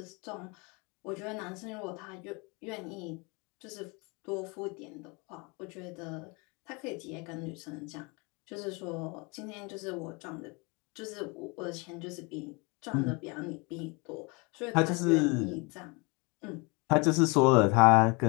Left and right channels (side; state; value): right; quieter; 29.2 dB